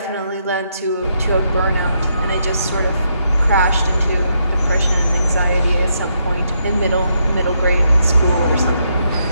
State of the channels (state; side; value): inverted; both; correlation -0.78